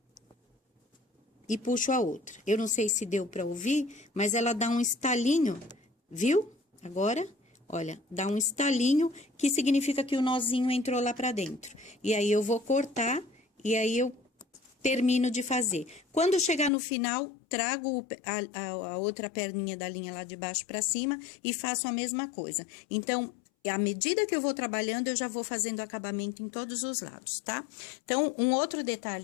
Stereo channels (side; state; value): right; drops out; at 16.7 s